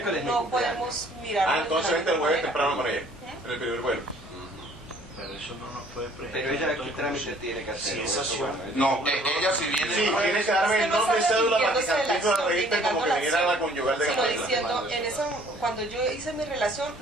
es mi no cumpleaños. podemos mirar. Entonces vente el jueves temprano con ella. En el primer vuelo. Pero eso no nos puede presentar. Pero ella, ¿qué trámite tiene que hacer? Sí, Eso, esa bueno, No, ella si viene... Sí, el jueves- tiene que darme el nombre y cédula para que Arrepintiéndose de la Cantinflas acción, registre como que negando la viniera la acción, conyugal de sino Cantinflas. diciendo, en esa, cuando yo hice mi relación,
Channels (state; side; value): normal; both; correlation 0.57